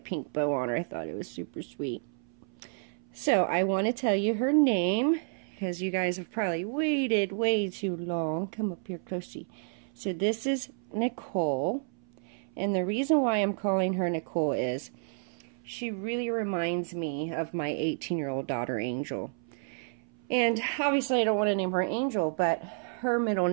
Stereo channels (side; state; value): left; silent; 58 dB below the other